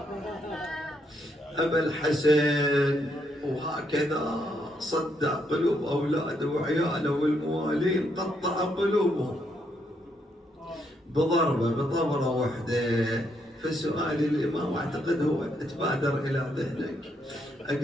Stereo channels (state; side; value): normal; both; correlation 0.76